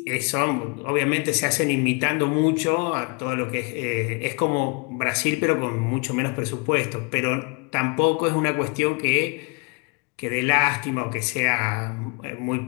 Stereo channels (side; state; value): right; quieter; 33.1 dB